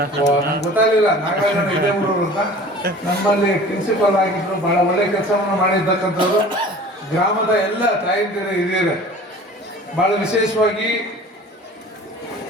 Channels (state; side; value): normal; both; correlation 0.43